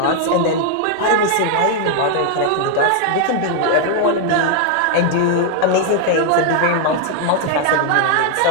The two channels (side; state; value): both; different; correlation 0.00